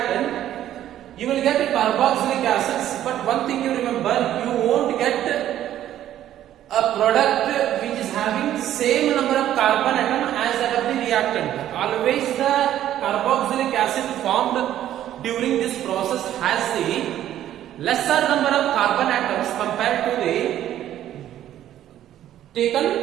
you will get carboxylic acids. But one thing you remember, you won't get a product which is having same number of carbon atom as that of the reactant. Always the carboxylic acid formed during this process has the lesser number of carbon atoms compared to the taken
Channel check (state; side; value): quieter; left; 12.0 dB